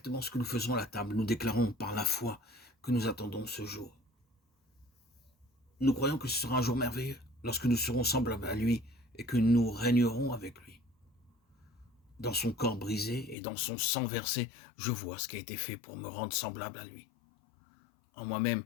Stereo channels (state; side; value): drops out; right; at 13.4 s